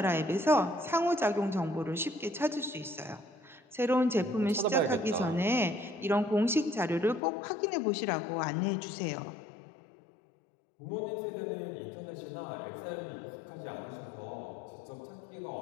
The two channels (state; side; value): drops out; right; at 7.2 s